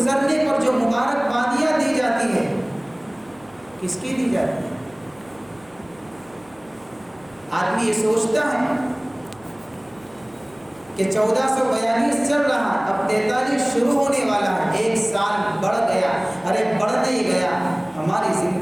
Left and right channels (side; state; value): right; noise; hum, 28 dB below the sound